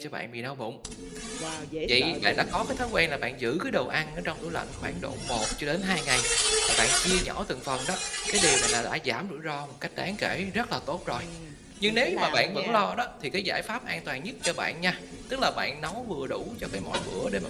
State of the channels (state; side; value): identical; both; correlation 1.00